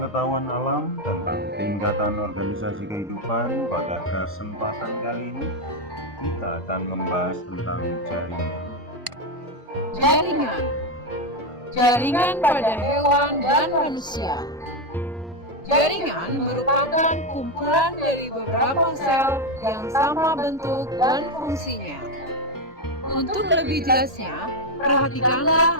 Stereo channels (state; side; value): normal; both; correlation 0.07